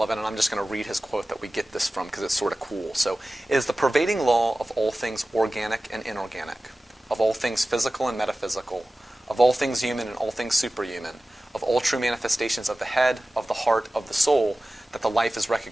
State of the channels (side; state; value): both; normal; correlation 0.96